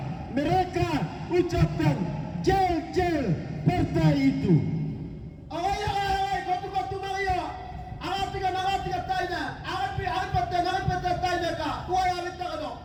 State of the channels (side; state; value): both; identical; correlation 1.00